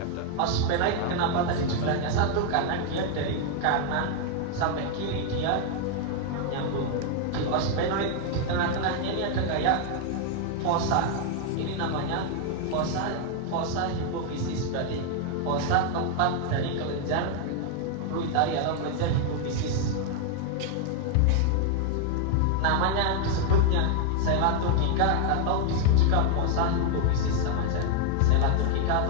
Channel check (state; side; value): different; both; correlation 0.00